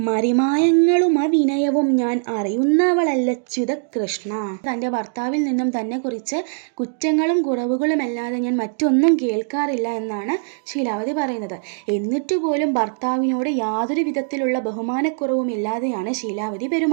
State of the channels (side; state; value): left; silent; digital silence